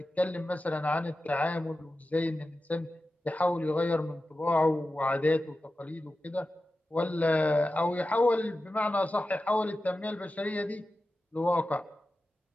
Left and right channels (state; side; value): normal; both; correlation 0.93